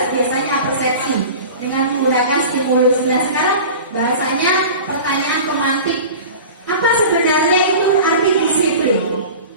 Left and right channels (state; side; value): inverted; both; correlation -0.37